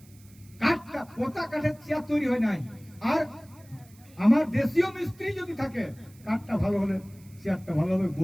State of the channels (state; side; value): noise; right; hiss, 27 dB below the sound